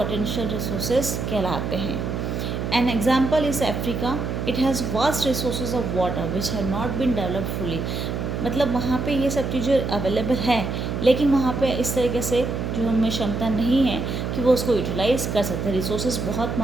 रिसोर्सेज कहलाते हैं। An example is Africa. It has vast resources of water which have not been developed fully. मतलब वहाँ पे ये सब चीज़ें अवेलेबल है, लेकिन वहाँ पे इस तरीके से जो हमें क्षमता नहीं है कि वो उसको यूटिलाइज़ कर सकते हैं। रिसोर्सेज बहुत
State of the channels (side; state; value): right; noise; hum, 3 dB below the sound